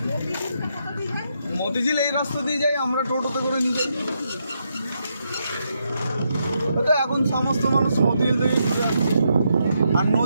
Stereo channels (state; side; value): inverted; both; correlation -0.80